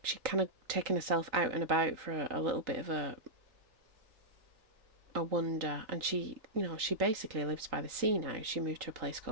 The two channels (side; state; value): left; late; 3.8 ms